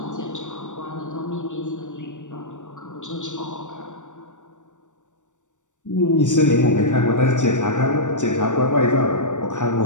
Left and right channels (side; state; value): right; late; 0.85 ms